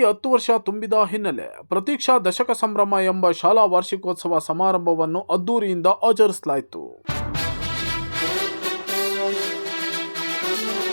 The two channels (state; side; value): inverted; both; correlation -1.00